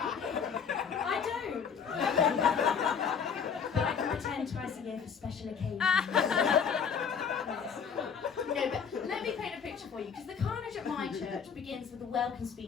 don't. But I can pretend twice a year for special occasions. No, but let me paint a picture for you, because the carnage at my church begins with a welcome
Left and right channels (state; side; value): quieter; right; 6.7 dB